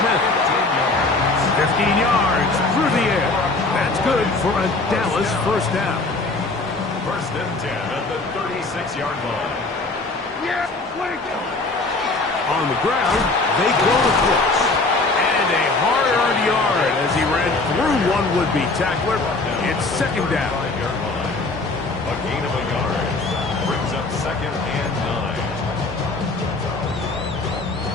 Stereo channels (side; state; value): right; quieter; 3.3 dB